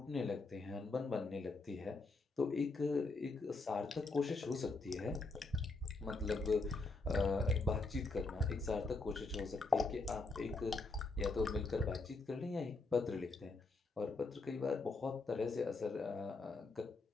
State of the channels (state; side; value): quieter; right; 3.5 dB